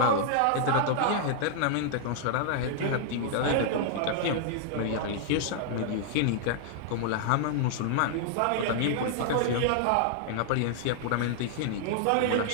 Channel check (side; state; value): both; different; correlation -0.01